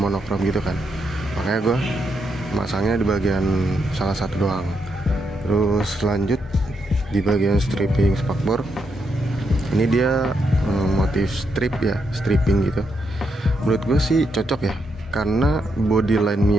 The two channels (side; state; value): both; normal; correlation 0.80